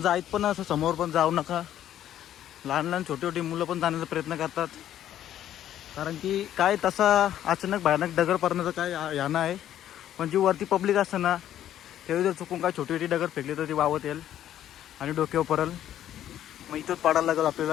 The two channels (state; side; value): quieter; right; 11.4 dB